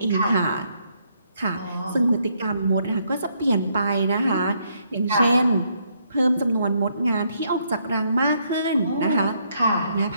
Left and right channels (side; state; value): both; inverted; correlation -0.73